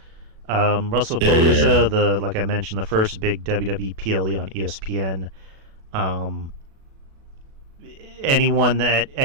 Wrestlepalooza, the like I mentioned, the first big WWE PLE on ESPN. Um, anyone that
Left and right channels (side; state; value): left; late; 37 ms